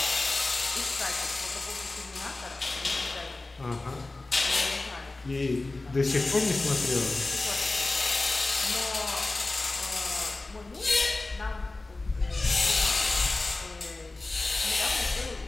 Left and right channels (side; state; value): right; quieter; 3.2 dB